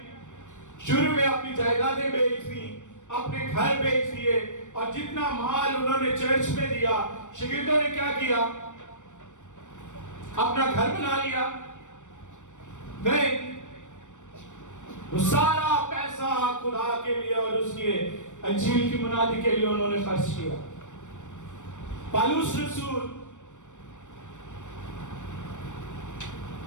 شروع میں اپنی جائیدادیں بیچ دی, اپنے گھر بیچ دیے, اور جتنا مال انہوں نے چرچ میں دیا, شاگردوں نے کیا کیا؟ اپنا گھر بنا لیا. نہیں, وہ سارا پیسہ خدا کے لیے اور اس کے انجیل کی منادی کے لیے انہوں نے خرچ کیا. پالوس رسول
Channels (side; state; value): right; late; 0.85 ms